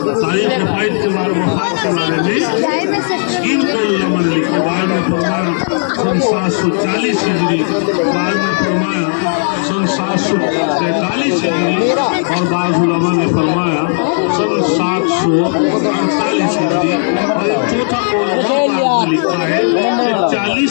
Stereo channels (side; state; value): right; silent; digital silence